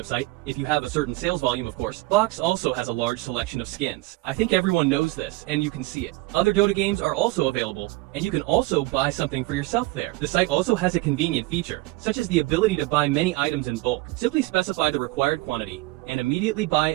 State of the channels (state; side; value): quieter; left; 20.6 dB